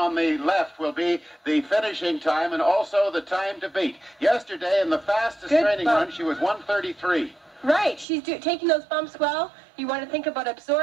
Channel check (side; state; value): left; drops out; at 8.1 s